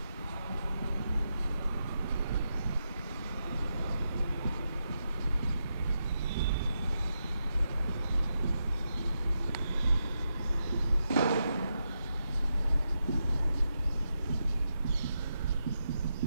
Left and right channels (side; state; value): both; inverted; correlation -0.86